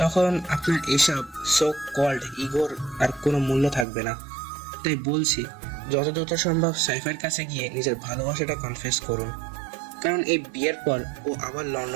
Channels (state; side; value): drops out; left; at 3.9 s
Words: তখন আপনার এসব সো কল্ড ইগোর আর কোনো মূল্য থাকবে না। তাই বলছি, যত দ্রুত সম্ভব সাইফার কাছে গিয়ে নিজের ভালোবাসাটা কনফেস করুন, কারণ এই বিয়ের পর ও আবার